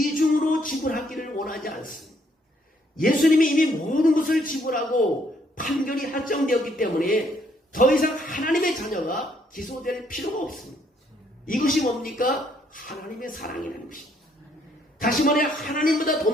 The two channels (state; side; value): normal; both; correlation 0.69